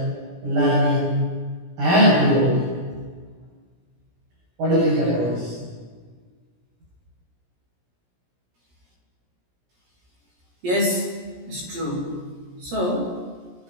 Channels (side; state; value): left; late; 17 ms